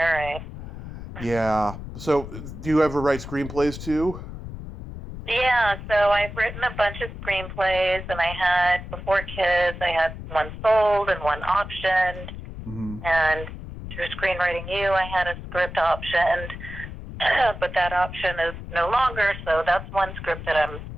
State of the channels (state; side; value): noise; left; rumble, 10 dB below the sound